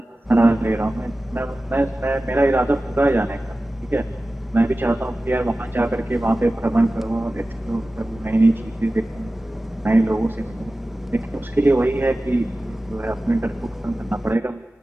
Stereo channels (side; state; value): both; normal; correlation 0.96